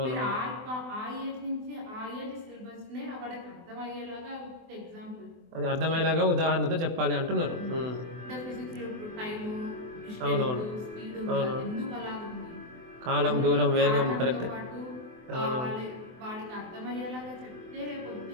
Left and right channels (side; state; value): left; late; 24 ms